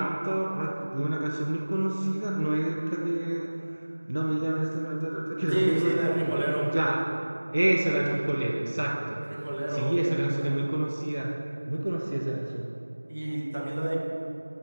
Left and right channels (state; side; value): inverted; both; correlation -1.00